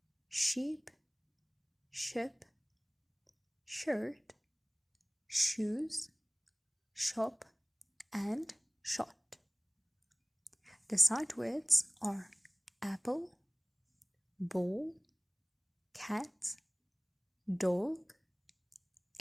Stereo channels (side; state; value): both; identical; correlation 1.00